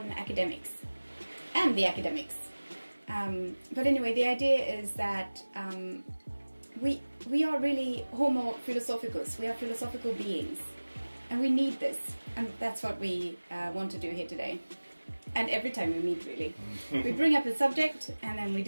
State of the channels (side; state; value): both; inverted; correlation -1.00